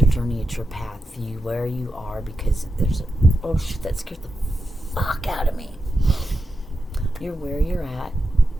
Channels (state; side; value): normal; both; correlation 0.88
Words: your journey, it's your path. You where you are, because there's oh shit, that scared the fuck out of me. You're where you're at